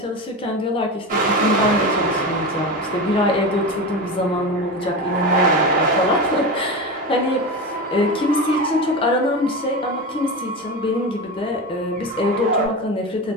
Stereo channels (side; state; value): both; normal; correlation 0.23